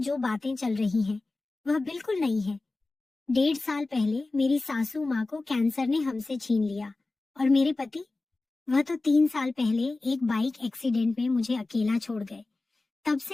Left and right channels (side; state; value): right; quieter; 3.3 dB